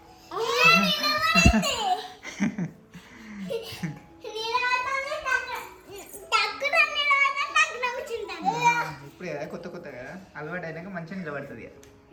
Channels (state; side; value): identical; both; correlation 1.00